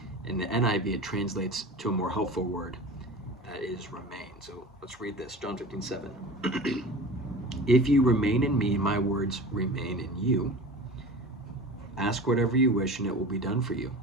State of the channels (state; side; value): normal; both; correlation 0.36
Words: In the NIV, it translates to a more helpful word that is remain. So let's read this, John 15:7. If you remain in me, my words remain in you. Ask whatever you wish and it will be done for you.